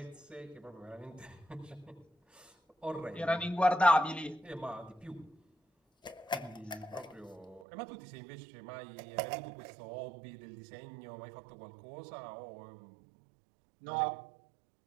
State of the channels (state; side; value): drops out; left; at 7.7 s